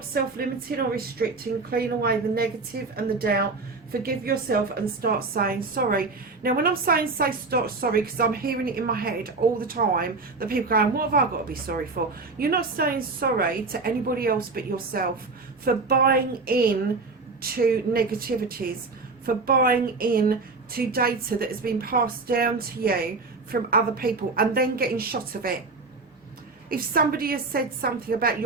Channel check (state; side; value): quieter; left; 3.9 dB